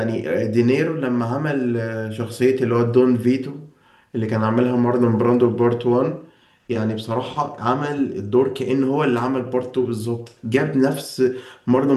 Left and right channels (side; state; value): both; identical; correlation 1.00